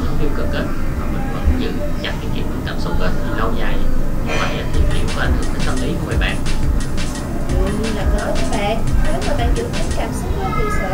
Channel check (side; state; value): both; identical; correlation 1.00